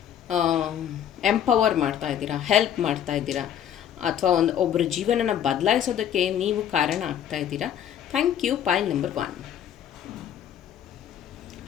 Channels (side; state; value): right; quieter; 9.7 dB